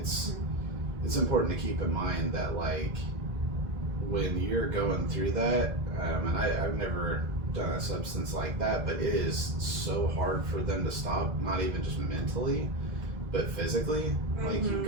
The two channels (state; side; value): late; left; 1.9 ms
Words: important to keep in mind that, like, when you're going through that, and I've never done a substance like that, but it is so hard for them to stop, not even just mentally, but physically. Like, you